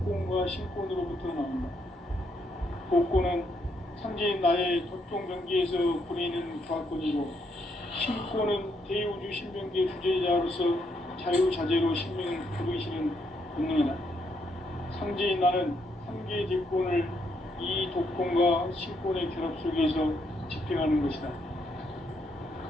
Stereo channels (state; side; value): normal; both; correlation 0.76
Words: 신권으로부터 나온다. 복권은 상제인 나의 도통병기에서 보내는 조합권이고, 신권은 대우주 신병기의 주제자로서 자유자재로 신명을 부르시는 본능이다. 상제인 나는 상계의 대권을 이 독권과 신권의 결합 속에서 집행하는 것이다.